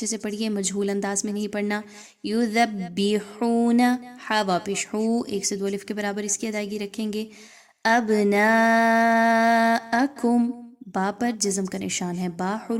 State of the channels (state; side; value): identical; both; correlation 1.00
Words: سے پڑھیے، مجہول انداز میں نہیں پڑھنا۔ یذبحون، ہا واپش ہو، 1 سے 2 الف کے برابر اس کی ادائیگی رکھیں گے۔ ابناءکم، با پر جزم کا نشان ہے، با